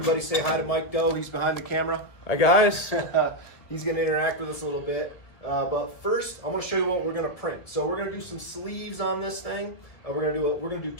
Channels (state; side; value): late; right; 2.0 ms